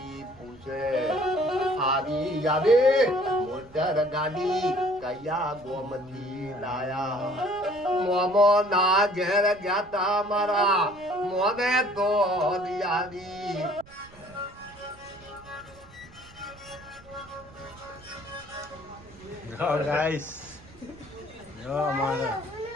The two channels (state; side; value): noise; right; rumble, 23 dB below the sound